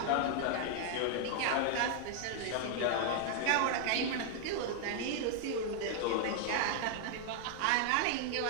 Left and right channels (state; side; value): different; both; correlation 0.00